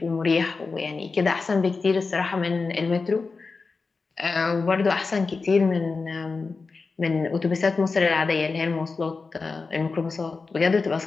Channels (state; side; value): quieter; right; 4.3 dB